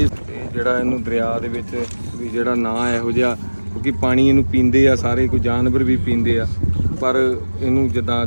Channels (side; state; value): both; inverted; correlation -1.00